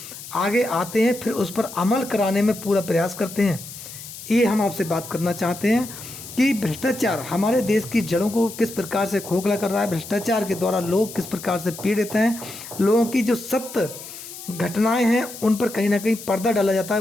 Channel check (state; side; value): noise; left; hiss, 13 dB below the sound